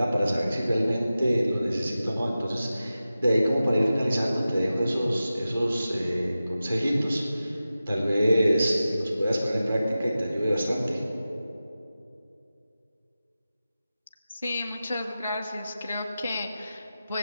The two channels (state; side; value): inverted; both; correlation -0.94